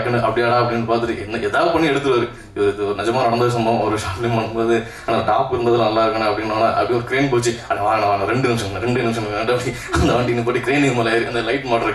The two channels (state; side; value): identical; both; correlation 1.00